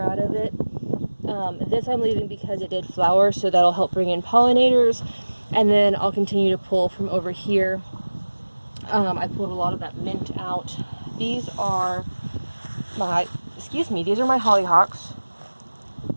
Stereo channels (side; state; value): both; inverted; correlation -1.00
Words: out of it. This I'm leaving because it did flower, so that'll help bring in pollinators. And then I'll continue to pull from over here. I pulled a lot of that mint out. These are my, these are my hollyhocks.